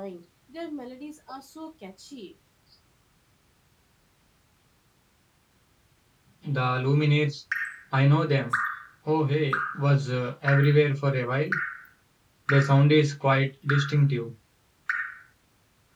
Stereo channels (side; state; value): both; identical; correlation 1.00